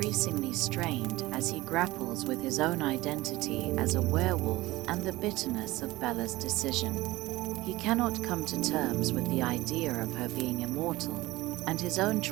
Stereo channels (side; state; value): left; quieter; 19.0 dB